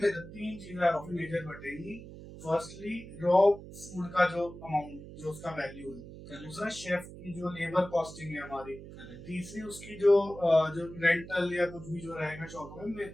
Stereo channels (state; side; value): noise; right; hum, 14 dB below the sound